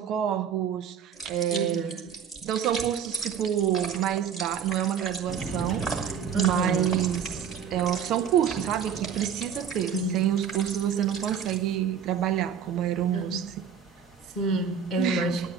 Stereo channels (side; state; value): left; quieter; 7.7 dB